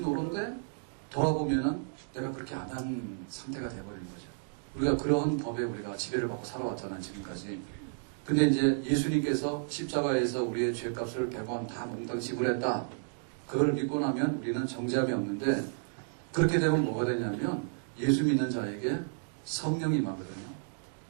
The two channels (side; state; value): left; silent; digital silence